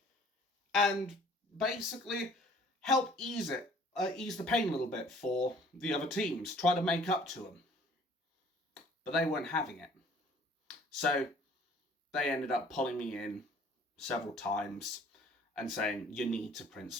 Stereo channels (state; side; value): normal; both; correlation 0.54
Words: And basically help ease the pain a little bit for the other teams, try to make up to them. But they weren't having it. So they ended up pulling me in several times and saying, you need to print